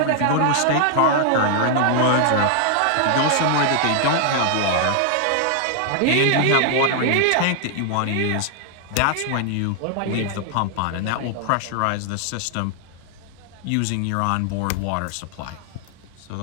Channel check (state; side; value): different; both; correlation 0.00